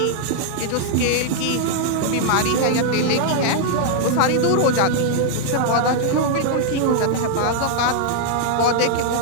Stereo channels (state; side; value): different; both; correlation -0.01